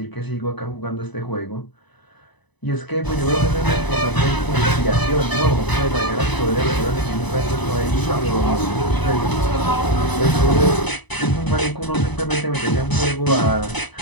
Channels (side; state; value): right; late; 1.0 ms